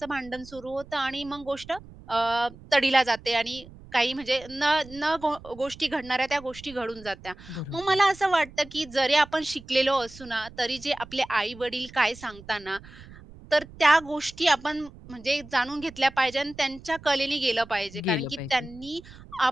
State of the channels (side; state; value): right; noise; rumble, 19 dB below the sound